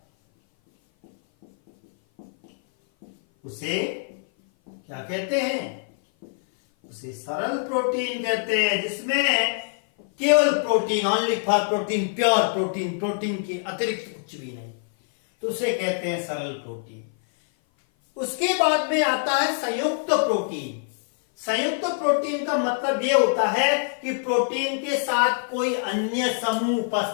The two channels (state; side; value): silent; right; 57 dB below the other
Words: उसे क्या कहते हैं? उसे सरल प्रोटीन कहते हैं। जिसमें केवल protein, only for protein, pure protein, protein के अतिरिक्त कुछ भी नहीं, तो उसे कहते हैं सरल प्रोटीन। उसके बाद में आता है संयुक्त प्रोटीन। संयुक्त प्रोटीन का मतलब यह होता है कि प्रोटीन के साथ कोई अन्य समूह